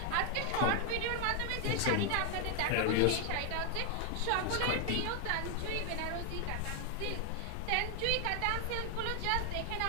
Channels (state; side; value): different; both; correlation 0.00